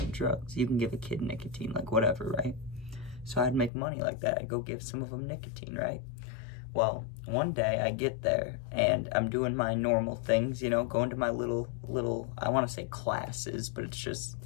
drugs, you can give a kid nicotine, like, whatever, right? So I'd make money like that. I'd go give some of them nicotine, right? Well, one day I get there and I'm doing my normal things, you know, going to my little, I want to say classes, but it's just,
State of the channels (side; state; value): right; drops out; at 3.7 s